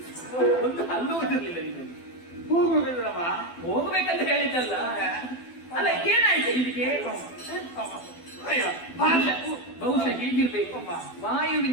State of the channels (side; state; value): right; late; 12 ms